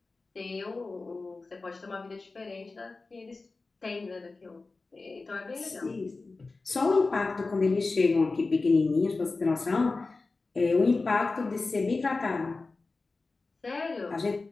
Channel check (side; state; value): right; quieter; 3.7 dB